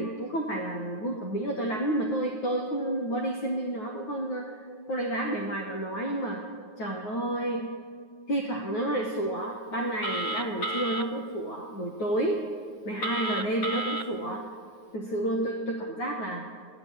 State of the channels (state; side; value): late; right; 9.4 ms